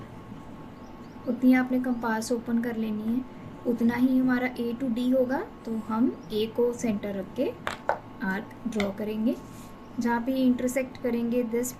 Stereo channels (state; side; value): identical; both; correlation 1.00